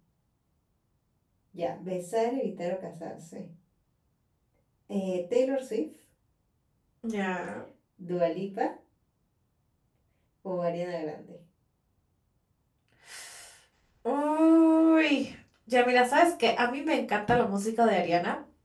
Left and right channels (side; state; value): both; identical; correlation 1.00